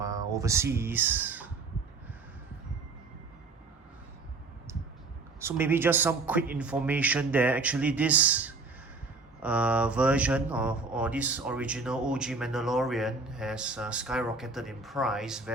overseas. So maybe just some quick information there. Actually, this version or this original OG Mandalorian has skyrocketed in price,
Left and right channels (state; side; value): quieter; left; 3.8 dB